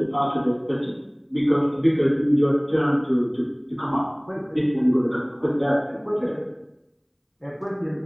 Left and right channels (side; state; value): both; identical; correlation 1.00